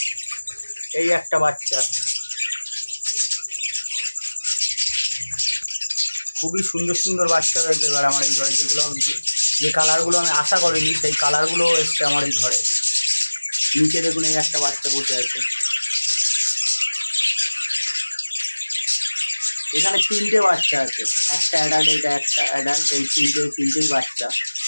এই একটা বাচ্চা, খুবই সুন্দর সুন্দর বাচ্চা রয়েছে এবার আমার এই ঘরে। যেগুলো যে কালারগুলো আমি আশা করিনি সেই কালারগুলো এসছে আমার এই ঘরে। নিচে দেখুন, এই একটা বাচ্চা বসে আছে। এখানে তিনটে বাচ্চা আছে, একটা অ্যাডাল্ট, এটা একটা অ্যাডাল্ট, এই তিনটেই বাচ্চা।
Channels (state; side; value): inverted; both; correlation -1.00